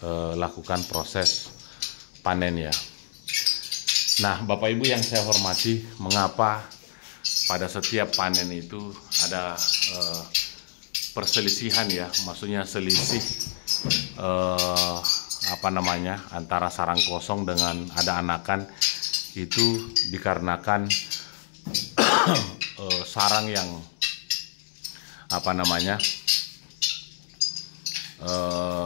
lakukan proses panen ya. Nah, Bapak Ibu yang saya hormati, mengapa pada setiap panen itu ada perselisihan ya, maksudnya selisih antara sarang kosong dengan ada anakan, itu dikarenakan sarang yang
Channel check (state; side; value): silent; right; digital silence